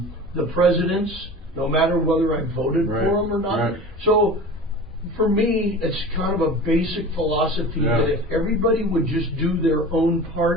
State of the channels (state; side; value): normal; both; correlation 0.36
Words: presidents, no matter whether I voted for them or not. So for me, it's kind of a basic philosophy that if everybody would just do their own